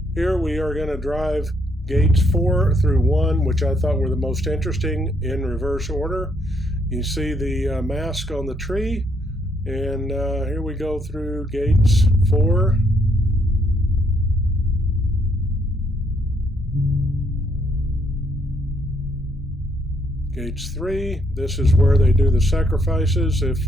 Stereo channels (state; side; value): normal; both; correlation 0.72